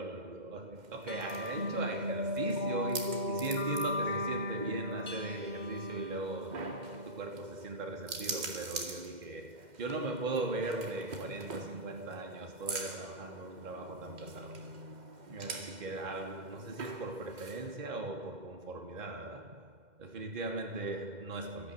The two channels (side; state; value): left; late; 2.1 ms